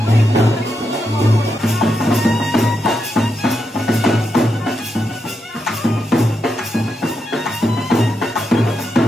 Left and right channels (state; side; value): normal; both; correlation 0.84